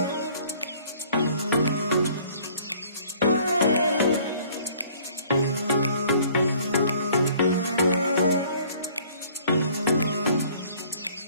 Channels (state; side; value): inverted; both; correlation -0.56